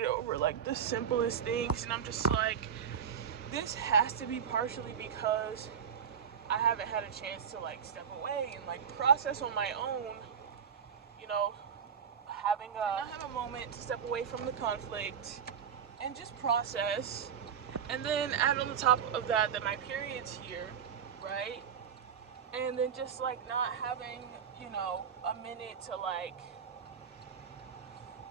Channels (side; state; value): left; quieter; 7.6 dB